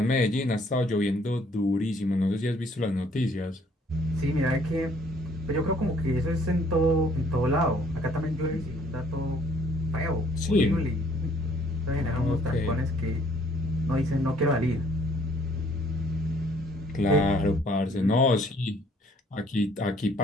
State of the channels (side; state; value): both; normal; correlation 0.61